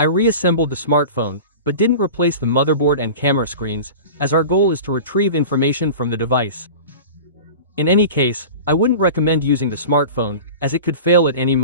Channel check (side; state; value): both; inverted; correlation -0.34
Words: reassembled the smartphone, but didn't replace the motherboard and camera screens, as our goal is to retrieve information from the device. In any case, I wouldn't recommend using the smartphone, as it could fail at any